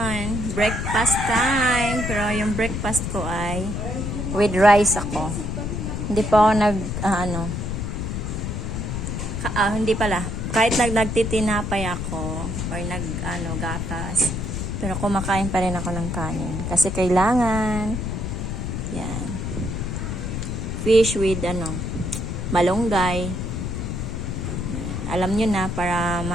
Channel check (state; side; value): noise; left; rumble, 3 dB below the sound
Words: breakfast time. Pero yung breakfast ko ay with rice ako. Hindi pa ako hindi pala. Kahit nagtitinapay ako or gatas. Pero kumakain pa rin ako ng kanin. Kasi kailangan. Yan. Fish with malunggay. Alam nyo na, para